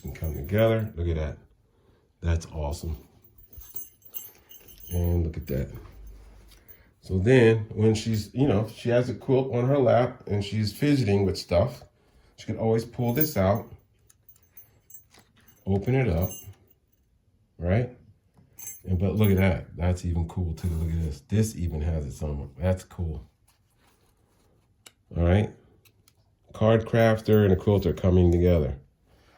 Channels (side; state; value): both; identical; correlation 1.00